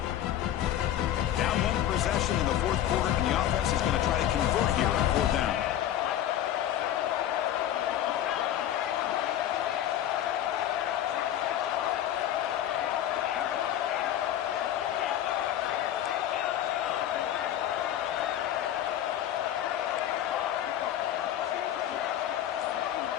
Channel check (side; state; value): right; quieter; 11.6 dB